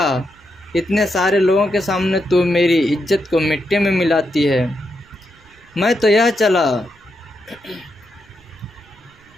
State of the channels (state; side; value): noise; right; rumble, 29 dB below the sound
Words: इतने सारे लोगों के सामने तू मेरी इज्जत को मिट्टी में मिलाती है। मैं तो यह चला,